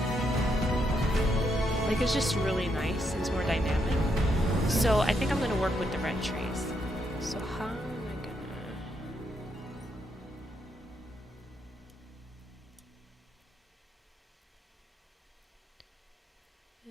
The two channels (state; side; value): normal; both; correlation 0.78